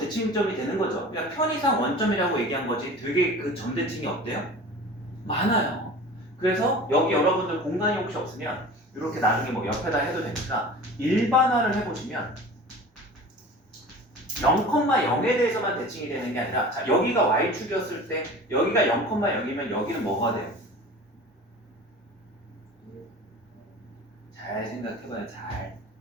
되는 거죠. 그러니까 편의상 원점이라고 얘기한 거지 되게 그 점 대칭이 없대요? 많아요. 그래서 여기 여러분들 공간이 혹시 없으면 이렇게 나중에 뭐 옆에다 해도 되니까 일반화를 해보시면 0,0에 대해서만 대칭이 되는 게 아니라, 자, 여기가 y축이었을 때 여기가 0,0이면 여기는 뭐가 돼요? 잘 생각해봐요. 잘.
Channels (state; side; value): normal; both; correlation 0.39